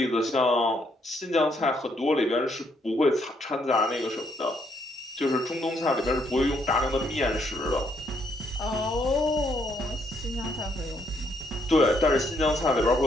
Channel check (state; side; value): normal; both; correlation 0.72